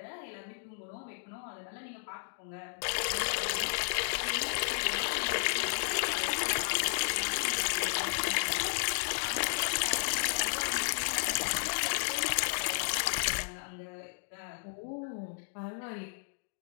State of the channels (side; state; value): right; silent; digital silence